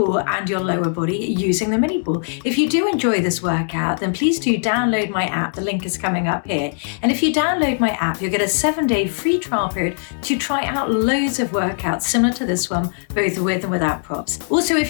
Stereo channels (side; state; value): right; silent; 62 dB below the other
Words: and your lower body using the MiniBall. If you do enjoy this workout, then please do download my app. The link is coming up here. And if you download my app, you'll get a 7-day free trial period to try out loads of workouts similar to this one, both with and without props. Also, if